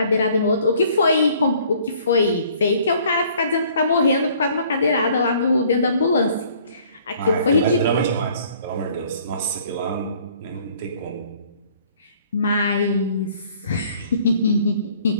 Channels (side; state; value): both; inverted; correlation -0.57